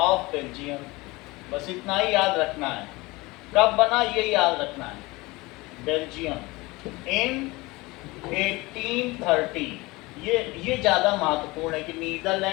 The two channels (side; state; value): right; quieter; 22.5 dB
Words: ऑफ बेल्जियम. बस इतना ही याद रखना है. कब बना ये याद रखना है. बेल्जियम इन 1830. ये ज्यादा महत्वपूर्ण है कि